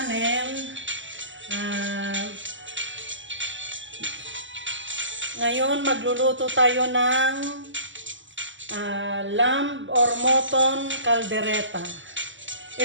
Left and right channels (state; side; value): late; left; 0.55 ms